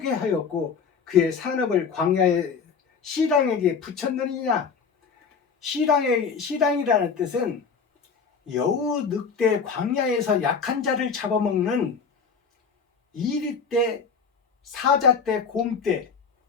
하였고 그의 산업을 광야의 시랑에게 붙였느니냐. 시랑이라는 뜻은 여우 늑대 광야에서 약한 자를 잡아먹는 이리떼, 사자떼, 곰떼,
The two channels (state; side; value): quieter; right; 5.7 dB